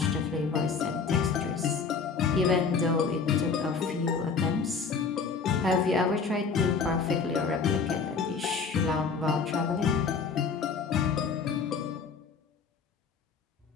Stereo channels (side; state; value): right; quieter; 5.3 dB